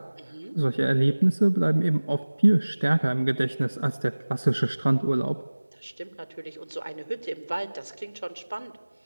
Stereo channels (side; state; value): both; inverted; correlation -1.00